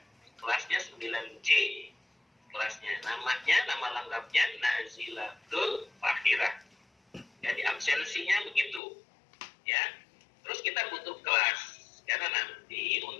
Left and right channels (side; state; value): right; drops out; at 8.8 s